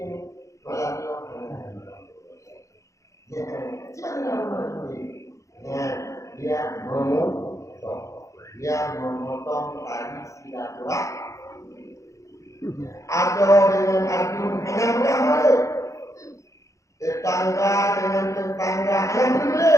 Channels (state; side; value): late; right; 0.15 ms